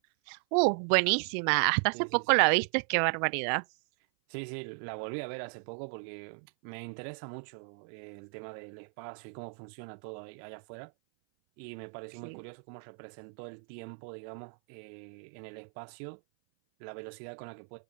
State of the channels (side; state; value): left; silent; 55 dB below the other